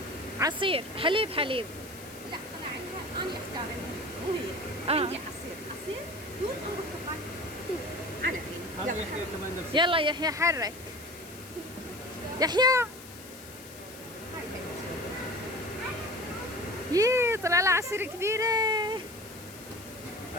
عصير حليب حليب. لا طلع عندها انا اختار مو هي. عندي عصير توت او برتقال. توت على فين. يلا يحيى كمان نفس يلا يحيى حرك. يحيى هاي بنتي. يي طلع لها عصير كبيرة.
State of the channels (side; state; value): left; noise; hiss, 17 dB below the sound